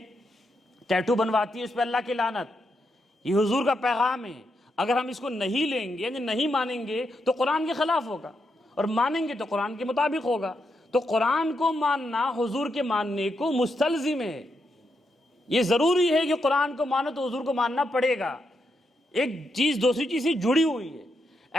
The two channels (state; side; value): normal; both; correlation 0.82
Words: ٹیٹو بنواتی ہے اس پہ اللہ کی لعنت، یہ حضور کا پیغام ہے. اگر ہم اس کو نہیں لیں گے یعنی نہیں مانیں گے تو قرآن کے خلاف ہوگا، اور مانیں گے تو قرآن کے مطابق ہوگا. تو قرآن کو ماننا حضور کے ماننے کو مستلزم ہے. یہ ضروری ہے کہ قرآن کو مانو تو حضور کو ماننا پڑے گا. ایک چیز دوسری چیز سے جڑی ہوئی ہے.